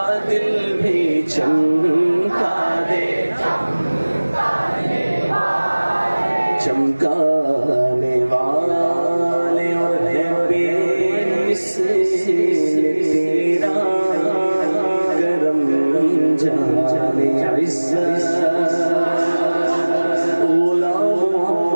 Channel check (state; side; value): inverted; both; correlation -1.00